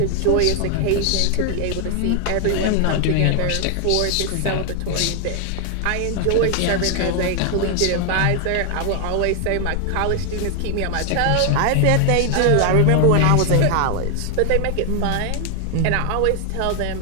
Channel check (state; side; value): different; both; correlation 0.00